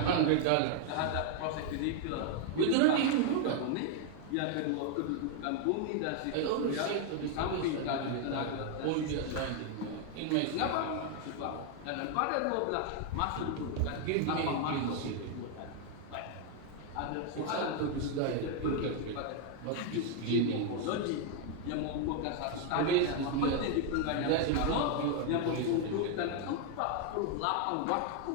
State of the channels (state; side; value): different; both; correlation 0.00